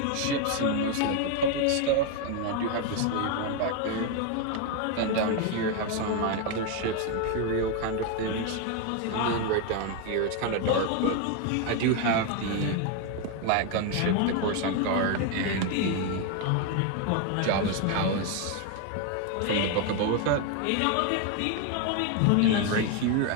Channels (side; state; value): both; different; correlation 0.01